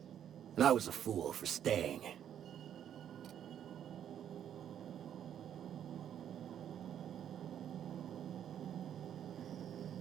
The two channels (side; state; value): left; quieter; 9.7 dB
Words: and I was a fool for staying.